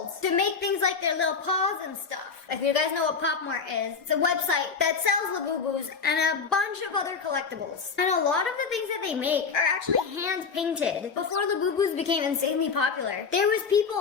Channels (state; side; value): quieter; right; 5.4 dB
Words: to make things like their little paws and stuff. If you guys know what Pop Mart is, it's a website that sells Labubus and a bunch of other collectibles. And a lot of the things that they make are actually hand painted. Before Labubus became insanely popular, there was